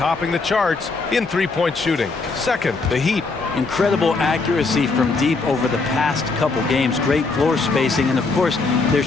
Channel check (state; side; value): quieter; right; 3.9 dB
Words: the charts in three-point shooting. Second, the Heat. Incredible accuracy from deep over the past couple games. Great floor spacing, and of course, their